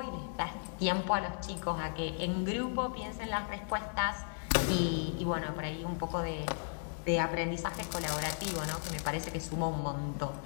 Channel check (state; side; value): silent; right; digital silence